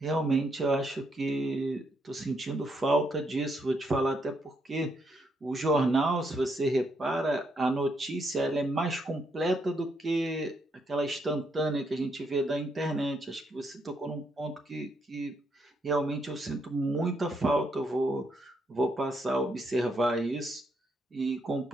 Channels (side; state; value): both; normal; correlation 0.76